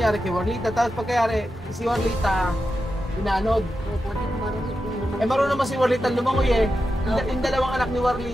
kay Warlita. Tapos pagkayari, si Warlita, inaanod. Opo, di ko marunong naman. Eh, marunong naman si Warlita lumangoy eh. Yung dalawang anak ni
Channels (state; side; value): normal; both; correlation 0.90